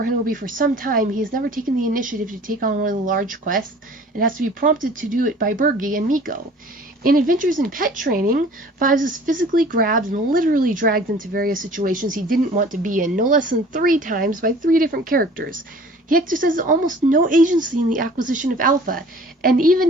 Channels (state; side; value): normal; both; correlation 0.48